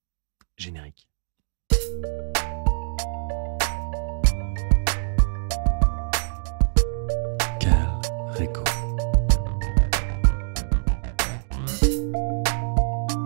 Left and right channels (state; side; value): silent; left; digital silence